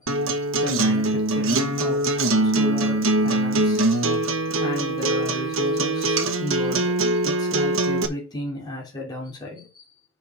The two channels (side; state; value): both; normal; correlation 0.20